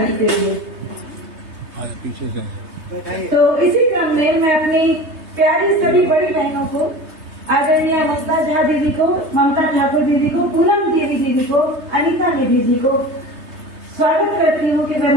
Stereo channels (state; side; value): late; left; 3.2 ms